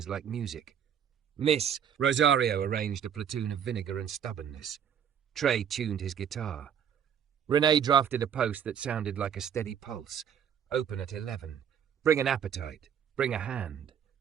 like music. Miss Rosario arranged a platoon of vinegar and stubbornness. Trey tuned his guitar. Renee drafted a post that sounded like a steady pulse. Open at 11. Bring an appetite. Bring a hand.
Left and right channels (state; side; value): quieter; left; 8.5 dB